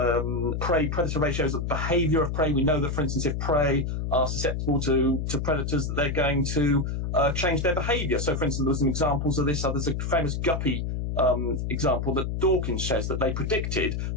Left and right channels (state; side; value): noise; left; hum, 2 dB below the sound